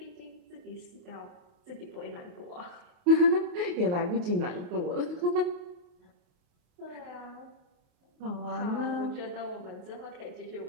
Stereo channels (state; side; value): late; left; 28 ms